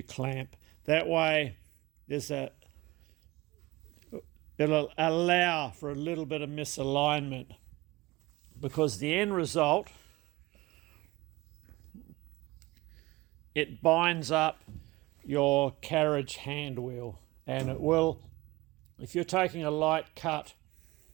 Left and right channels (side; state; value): left; quieter; 20.9 dB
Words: clamp. That way it'll allow for a little bit of misalignment, because the end result, it binds up your carriage hand wheel, and it will, if you're taking a light cut,